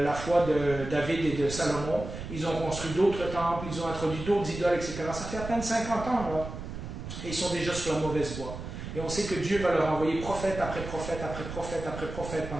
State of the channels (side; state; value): right; noise; rumble, 9 dB below the sound